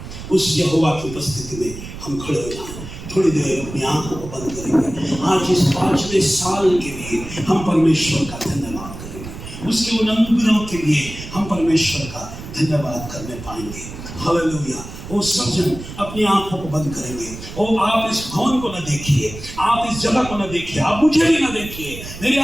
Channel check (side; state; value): right; noise; rumble, 12 dB below the sound